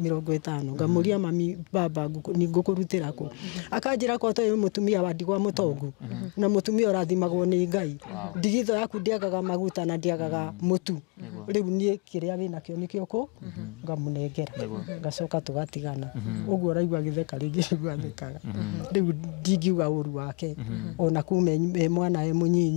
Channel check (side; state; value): right; quieter; 32.3 dB